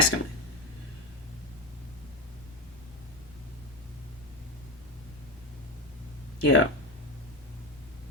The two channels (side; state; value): both; normal; correlation 0.17